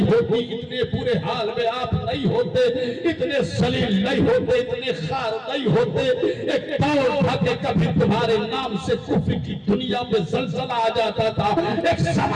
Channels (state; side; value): identical; both; correlation 1.00